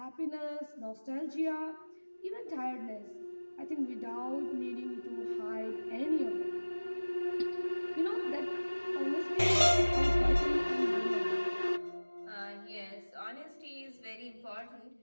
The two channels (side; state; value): both; inverted; correlation -1.00